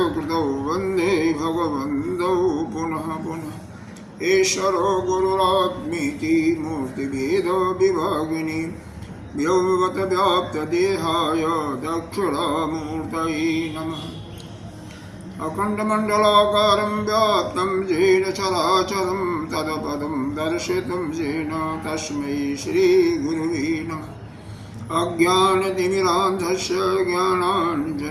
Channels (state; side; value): identical; both; correlation 1.00